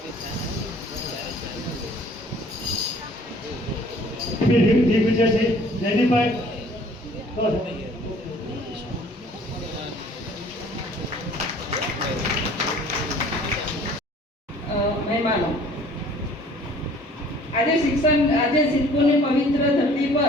દિગ્વિજય છે જયદીપભાઈ. મહેમાનો, આજે સિદ્ધપુરની પવિત્ર ધરતી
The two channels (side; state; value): both; normal; correlation 0.53